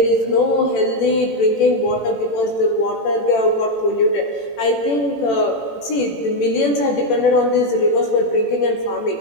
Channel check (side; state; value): right; late; 18 ms